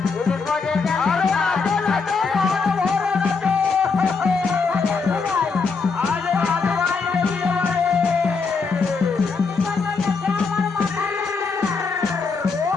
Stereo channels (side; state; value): right; quieter; 4.7 dB